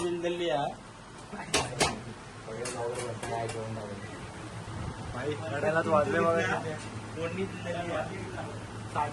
बिल दिली आहे. भाई रडायलाच वाजले बघा. फोडणी दिलेली आहे.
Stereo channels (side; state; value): both; identical; correlation 1.00